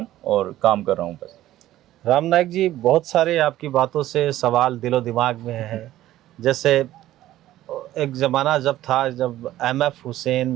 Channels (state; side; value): quieter; left; 14.3 dB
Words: और काम कर रहा हूँ बस। राम नायक जी, बहुत सारे आपकी बातों से सवाल दिलो दिमाग में है। जैसे एक ज़माना जब था, जब एमएफ